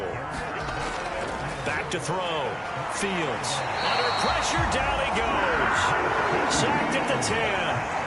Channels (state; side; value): identical; both; correlation 1.00